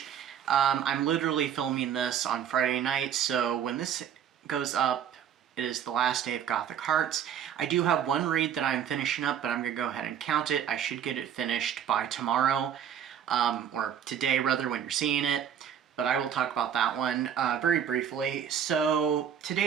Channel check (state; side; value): quieter; left; 8.8 dB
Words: I'm literally filming this on Friday night, so when this goes up, it is the last day of Gothic Hearts. I do have one read that I'm finishing up, but I'm going to go ahead and count it. I should get it finished by tomorrow, or today rather, when you're seeing it. But I will talk about that one very briefly. So